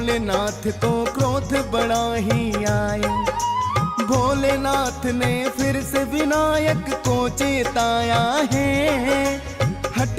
को क्रोध बड़ा ही आए। भोलेनाथ ने फिर से विनायक को चेताया है,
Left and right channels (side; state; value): both; identical; correlation 1.00